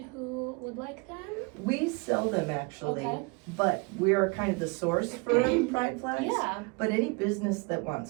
who would like them? We sell them actually, Okay. but we are kind of the source for pride flags. Yeah. But any business that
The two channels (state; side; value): quieter; left; 29.7 dB